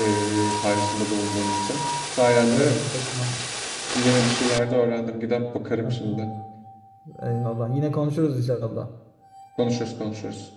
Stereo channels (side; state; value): both; identical; correlation 1.00